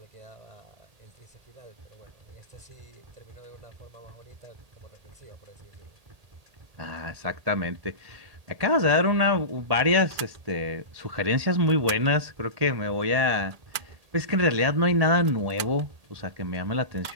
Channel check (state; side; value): late; left; 1.8 ms